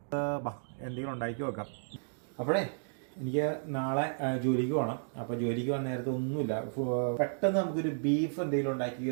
എന്തെങ്കിലും ഉണ്ടാക്കി വെക്കാം. അപ്പോഴേ എനിക്ക് നാളെ ജോലിക്ക് പോകണം. അപ്പോൾ ജോലിക്ക് വന്ന നേരത്തെ ഒന്നുമില്ല, പെട്ടെന്ന് നമുക്കൊരു ബീഫ് എന്തെങ്കിലും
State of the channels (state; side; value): silent; left; digital silence